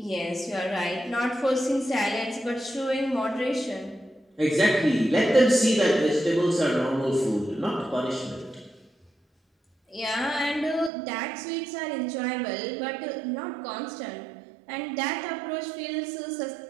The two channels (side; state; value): left; drops out; at 10.9 s